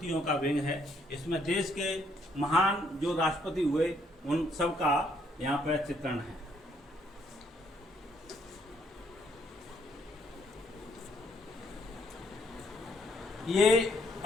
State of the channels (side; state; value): both; normal; correlation 0.70